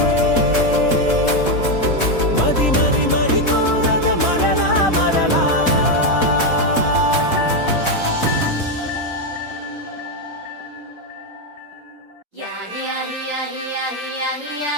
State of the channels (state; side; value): late; right; 4.1 ms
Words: మది మది మరి కోరద మరలా మరలా